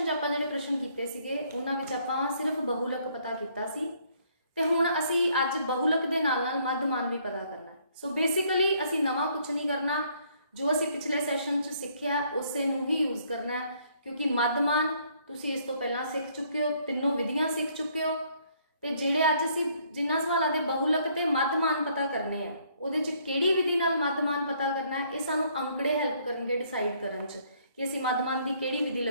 च आपां जिहड़े प्रश्न कीते सीगे उन्हां विच आपां सिर्फ बहुलक पता कीता सी ते हुण असी अज बहुलक दे नाल नाल मध्यमान भी पता करना। सो बेसिकली असी नवां कुछ नहीं करना, जो असी पिछले सैशन च सिੱਖਿਆ उसे नूं ही यूज़ करना है, क्योंकि मध्यमान तुसीं इस तो पहला सीख चुके हो, तीनों विधियां सीख चुके हो। तो जिहड़े अज असी जिन्हां सवालों के बहुलक ते मध्यमान पता करने हैं उहदे च किहड़ी विधि नाल मध्यमान पता करना है, ये सानूं अंकड़े हैल्प करनगे डिसाइड करन च कि असी मध्यमान की किहड़ी विधि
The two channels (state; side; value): inverted; both; correlation -0.66